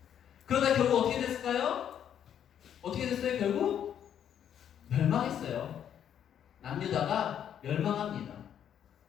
그러다 결국 어떻게 됐을까요? 어떻게 됐어요? 결국 멸망했어요. 남유다가 멸망합니다.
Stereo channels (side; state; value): right; quieter; 9.4 dB